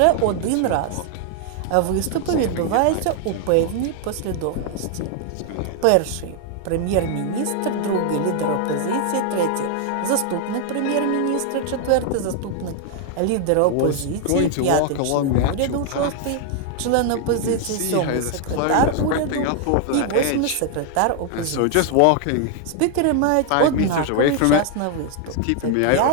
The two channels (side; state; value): both; different; correlation 0.00